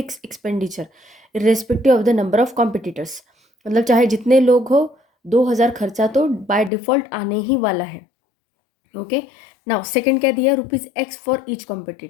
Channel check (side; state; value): right; drops out; at 6.7 s